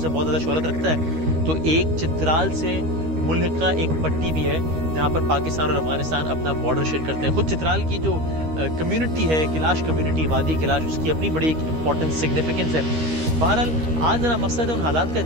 बहुत ज़्यादा शोहरत रखता है, तो एक चित्राल से मुल्का एक पट्टी भी है जहाँ पर पाकिस्तान और अफगानिस्तान अपना बॉर्डर शेयर करते हैं। खुद चित्राल की जो कम्युनिटी है, किलाश कम्युनिटी, वादी किलाश, उसकी अपनी बड़ी एक इंपॉर्टेंस, सिग्निफिकेंस है। बहरहाल आज मेरा मकसद है उन हालात का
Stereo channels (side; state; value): left; late; 13 ms